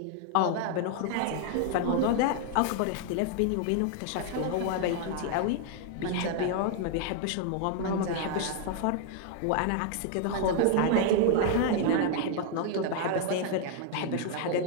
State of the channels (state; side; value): different; both; correlation 0.00